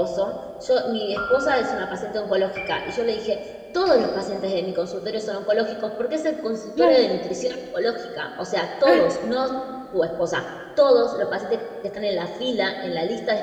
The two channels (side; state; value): both; identical; correlation 1.00